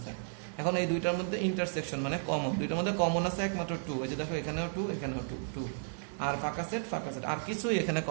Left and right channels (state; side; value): silent; left; digital silence